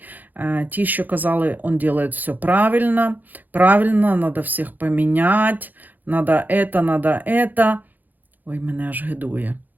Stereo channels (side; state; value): left; late; 0.084 ms